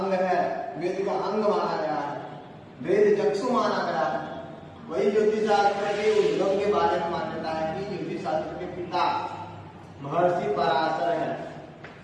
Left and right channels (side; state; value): both; identical; correlation 1.00